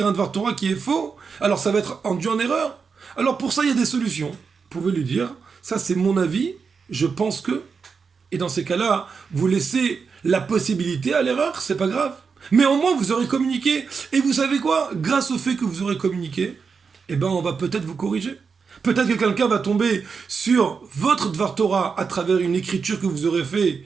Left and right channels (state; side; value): quieter; left; 5.5 dB